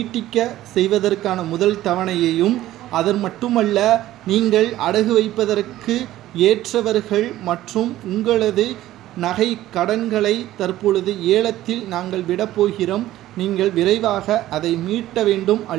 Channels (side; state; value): left; quieter; 14.6 dB